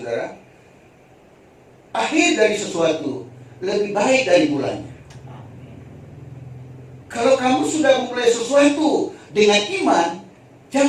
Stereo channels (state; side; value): identical; both; correlation 1.00